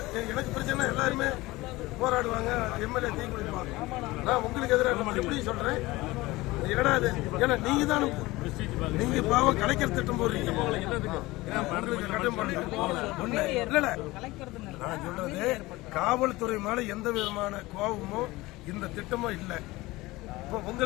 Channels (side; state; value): right; quieter; 20.1 dB